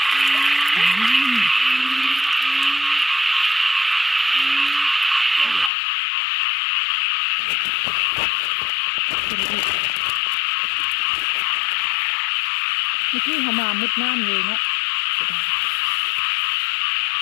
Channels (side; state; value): right; drops out; at 5.7 s